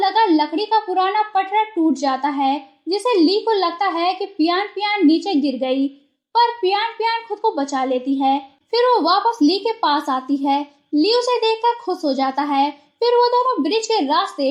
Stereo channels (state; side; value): identical; both; correlation 1.00